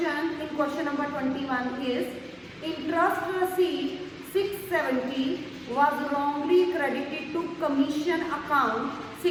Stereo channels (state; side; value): identical; both; correlation 1.00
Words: in question number 21 is interest received 670 was wrongly credited to commission account